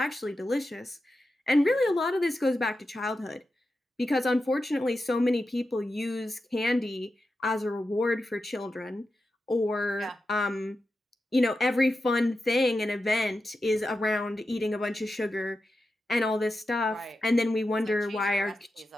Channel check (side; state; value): both; normal; correlation 0.90